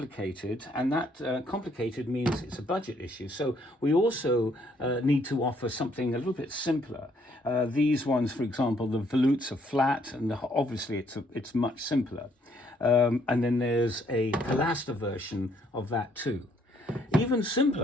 and that complicated means it's a budget issue. So we also need to offer something a little bit simpler. These ones, for example, the volutes are flat, and obviously it's much simpler. And then there's a pilaster version of that too. Even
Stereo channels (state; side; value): normal; both; correlation 0.67